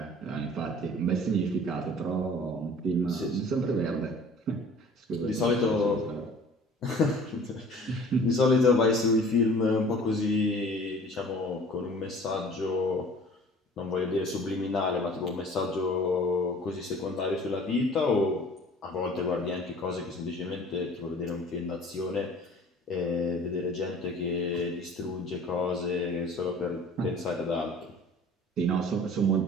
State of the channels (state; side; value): normal; both; correlation 0.48